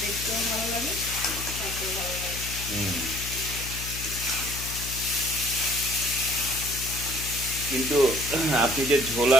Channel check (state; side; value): noise; left; hum, 9 dB below the sound